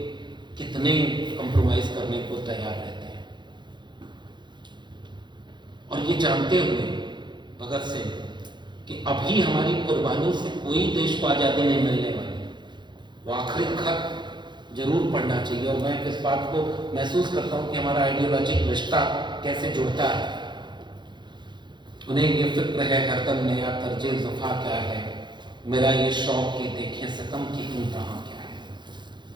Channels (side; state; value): left; late; 0.22 ms